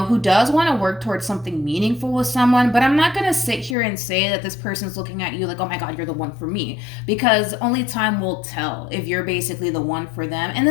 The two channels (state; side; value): drops out; right; at 3.8 s